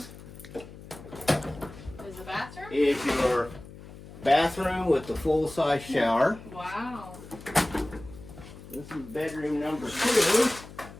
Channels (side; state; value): left; noise; hum, 16 dB below the sound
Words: Is the bathroom? is your bathroom with the full-size shower. Wow. This is bedroom number 2.